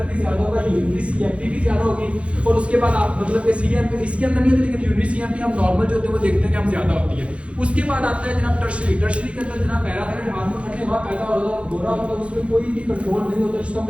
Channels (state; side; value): late; left; 0.061 ms